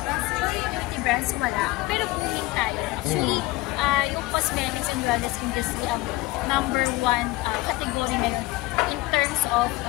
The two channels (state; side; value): quieter; right; 19.8 dB